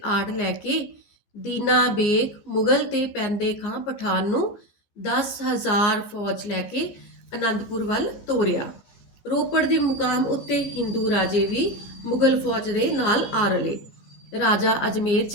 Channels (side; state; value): right; late; 14 ms